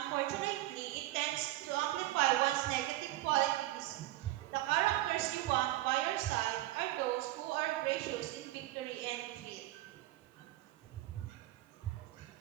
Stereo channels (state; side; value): quieter; left; 16.3 dB